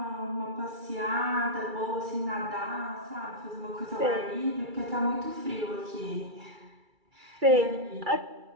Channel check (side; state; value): left; late; 2.3 ms